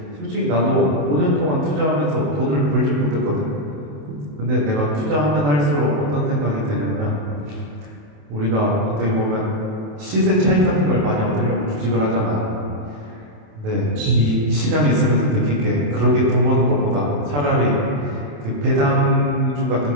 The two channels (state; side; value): late; left; 28 ms